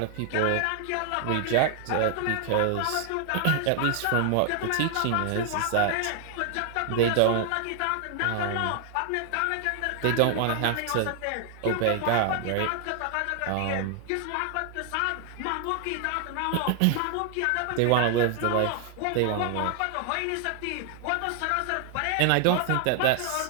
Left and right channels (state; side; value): different; both; correlation 0.00